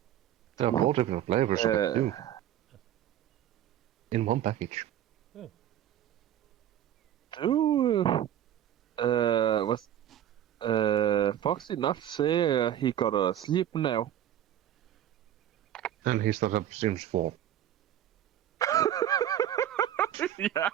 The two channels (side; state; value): left; quieter; 11.2 dB